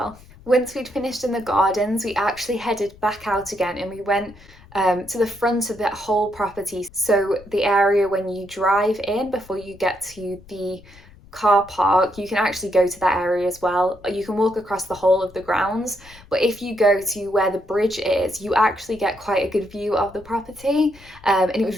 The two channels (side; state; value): left; noise; rumble, 23 dB below the sound